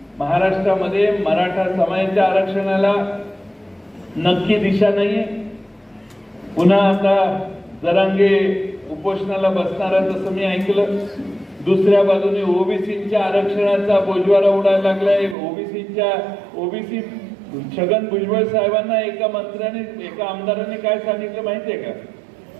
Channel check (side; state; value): left; drops out; at 15.4 s